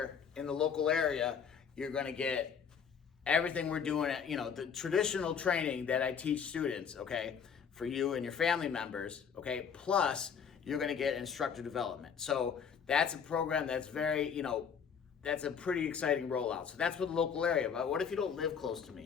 in the local area, you're gonna get everything we're doing at, the traditional training that I teach students, okay, for you and your family members, okay, plus you're gonna get instructor development. So that's a program that's very, that's a pretty exciting rollout. So that's for the local area. But what if you don't live close to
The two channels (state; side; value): quieter; right; 7.0 dB